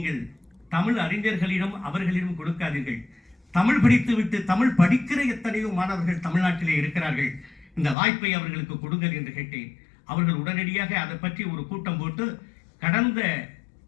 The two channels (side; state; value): right; drops out; at 8.0 s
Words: தமிழ் அறிஞர்களிடம் அவர்களிடம் கொடுக்காதீர்கள். தமிழ் படித்துவிட்டு தமிழ் படிக்கிற எத்தனையோ மாணவர்கள் தமிழ்நாட்டிலே இருக்கிறார்கள். இந்த வாய்ப்பை அவர்களுக்கு கொடுங்கள் என்று கேட்டேன். அவர்கள் உடனடியாக அதை பற்றி ஒரு கூட்டம் போட்டு கடந்த